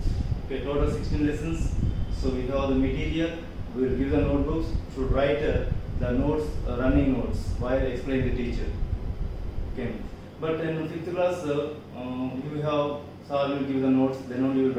Okay, total 16 lessons. So we have the material. We will give the notebooks. Should write the notes, running notes while explaining the teacher. Okay. But in 5th class, you have sir will give the notes. Then only you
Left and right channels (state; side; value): identical; both; correlation 1.00